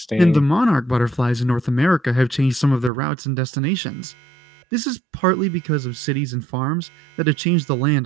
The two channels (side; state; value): left; drops out; at 2.9 s